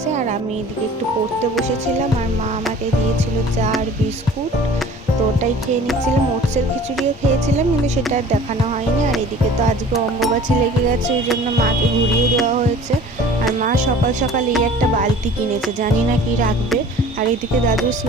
আর আমি এদিকে একটু পড়তে বসেছিলাম, আর মা আমাকে দিয়েছিল চা আর বিস্কুট, তো ওটাই খেয়ে নিচ্ছিলাম। ওটসের খিচুড়িও খেয়েছিলাম, কিন্তু সেটা আর দেখানো হয়নি। আর এদিকে তো আজকে অম্বুবাচী লেগে গেছে, ওই জন্য মাকে ঘুরিয়ে দেওয়া হয়েছে। আর মা সকাল সকাল এই একটা বালতি কিনেছে, জানি না কি রাখবে। আর এদিকে দাদুর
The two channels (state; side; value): normal; both; correlation 0.46